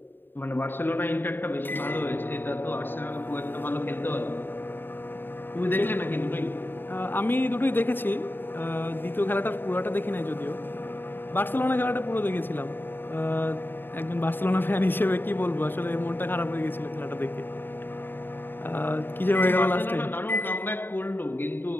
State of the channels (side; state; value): right; late; 0.096 ms